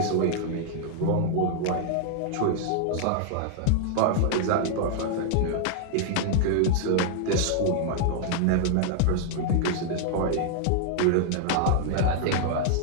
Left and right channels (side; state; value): both; different; correlation 0.00